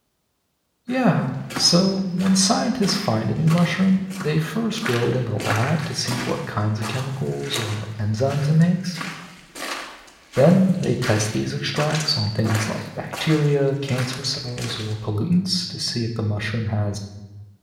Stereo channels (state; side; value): identical; both; correlation 1.00